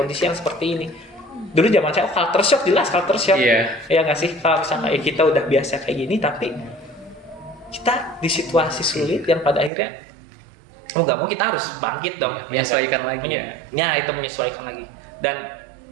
yang seperti ini. Dulu zaman saya culture shock, jelas culture shock, ya nggak sih, kalau misalnya kita udah biasa kayak gini, tapi kita di situasi sulit yang pada akhirnya mau nggak mau kita harus bangkit dong, menyesuaikan lagi itu menyesuaikan lagi. Dan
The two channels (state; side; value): drops out; left; at 9.7 s